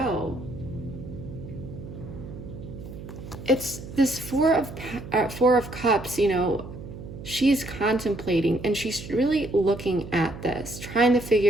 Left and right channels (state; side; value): noise; right; hum, 12 dB below the sound